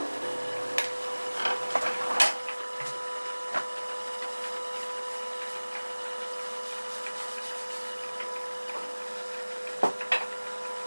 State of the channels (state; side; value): inverted; both; correlation -1.00